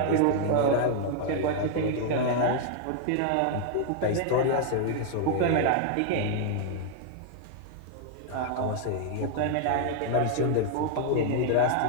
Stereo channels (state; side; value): different; both; correlation 0.00